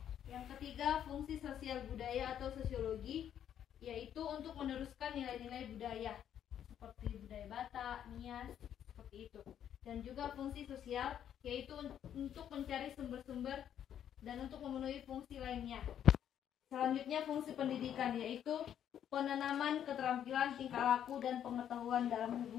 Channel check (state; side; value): quieter; right; 9.8 dB